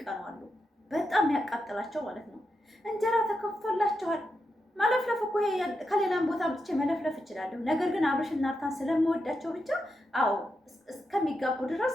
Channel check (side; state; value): both; normal; correlation 0.86